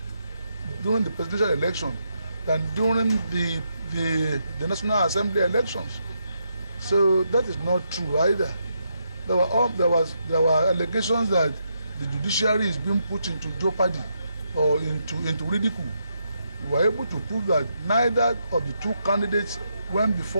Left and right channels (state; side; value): inverted; both; correlation -0.80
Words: during the presidential election than during the National Assembly elections. So that is not true either. There were allegations that the judiciary is being put into jeopardy or into ridicule. We were able to prove that neither of the two candidates went